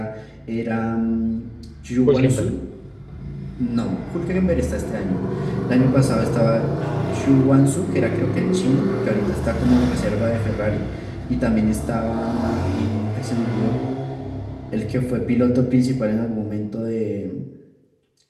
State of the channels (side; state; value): both; identical; correlation 1.00